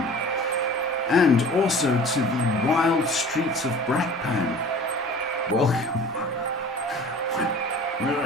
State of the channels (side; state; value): both; normal; correlation 0.44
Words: And also to the wild streets of Brakpan. Welcome. Where